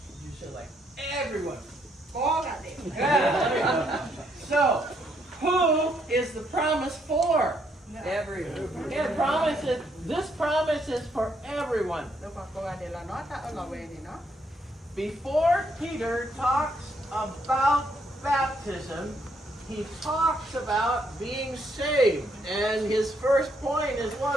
like everyone. Yeah. So, who is the promise for? Everyone. Yeah, this promise is for everyone. Before Peter talks about baptism, he talks about being saved. And his first point is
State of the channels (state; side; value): normal; both; correlation 0.73